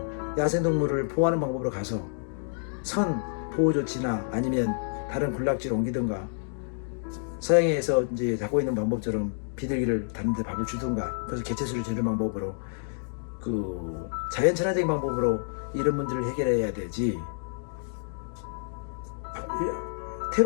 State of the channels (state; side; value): silent; right; digital silence